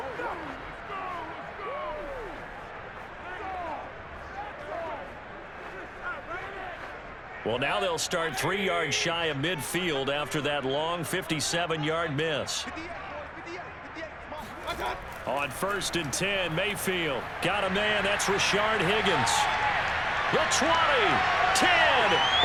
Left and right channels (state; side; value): identical; both; correlation 1.00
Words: Well, now they'll start 3 yards shy of midfield after that long 57-yard miss. On 1st and 10, Mayfield got a man. That's Rashard Higgins. The 20, 10,